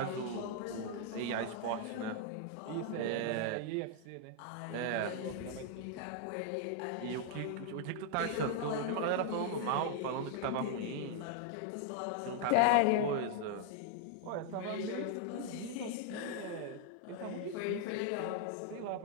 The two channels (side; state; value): both; different; correlation 0.00